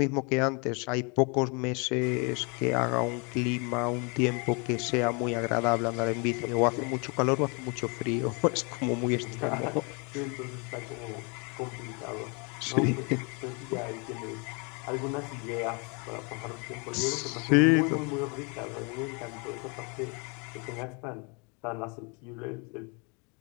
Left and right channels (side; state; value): right; quieter; 32.8 dB